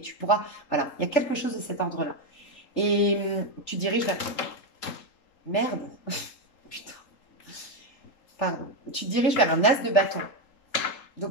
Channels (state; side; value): late; right; 3.8 ms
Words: Tu pourras. Voilà, il y a quelque chose de cet ordre-là. Et tu diriges vers. Merde. Putain. Pardon. Tu te diriges vers un as de bâton.